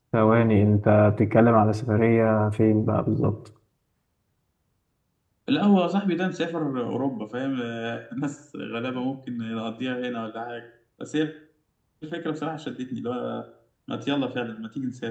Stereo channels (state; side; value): identical; both; correlation 1.00